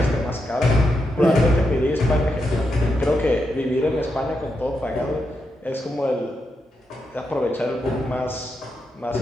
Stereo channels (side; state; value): both; normal; correlation 0.84